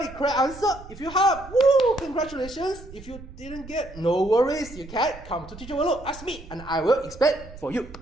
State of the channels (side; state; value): right; noise; rumble, 16 dB below the sound